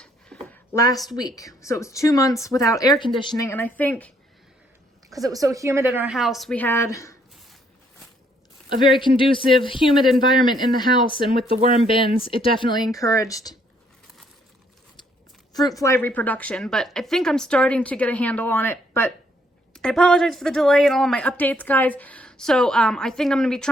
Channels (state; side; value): normal; both; correlation 0.68